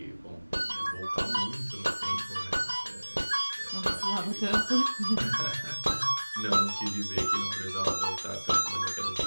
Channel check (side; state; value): both; inverted; correlation -1.00